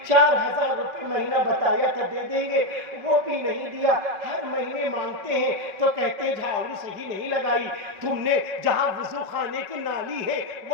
4000 روپے مہینہ بتایا تھا دے دیں گے، وہ بھی نہیں دیا، ہر مہینے مانگتے ہیں تو کہتے ہیں جھاڑو صحیح نہیں لگائی، تم نے جہاں وضو خانے کی نالی ہے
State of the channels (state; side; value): late; left; 5.5 ms